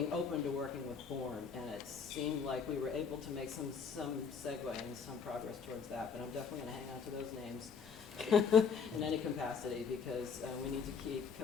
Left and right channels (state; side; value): quieter; right; 6.1 dB